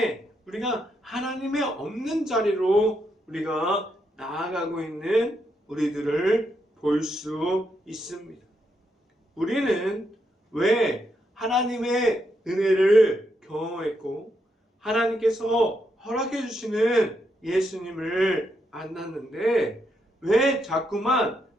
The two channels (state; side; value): normal; both; correlation 0.80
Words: 우리가 하나님의 없는 자리로 우리가 나아가고 있는 우리들을 볼 수 있습니다. 우리는 왜 하나님의 은혜를 경험했고 하나님께서 허락해 주시는 예수님을 만났는데 왜 자꾸만